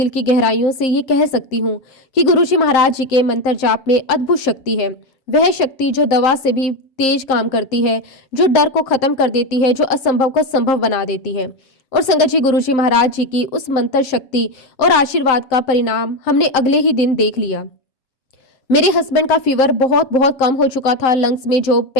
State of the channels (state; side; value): late; right; 7.5 ms